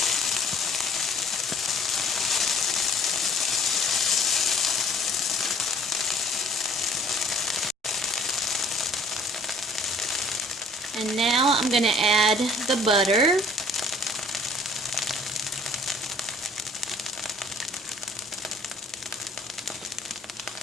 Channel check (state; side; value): normal; both; correlation 0.55